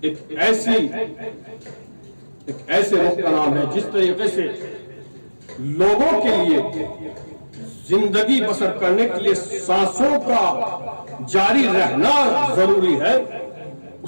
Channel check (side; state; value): both; inverted; correlation -1.00